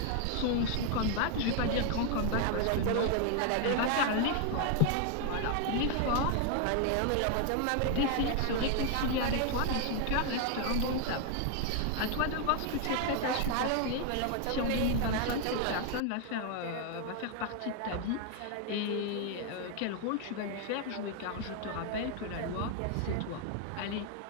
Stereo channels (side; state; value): both; different; correlation 0.01